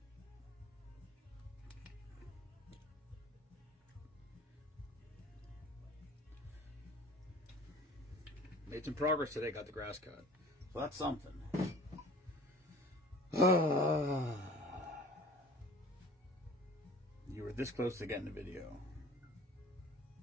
Made some progress today, got the grass cut. So that's something. You were this close to getting the video.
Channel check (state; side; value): normal; both; correlation 0.45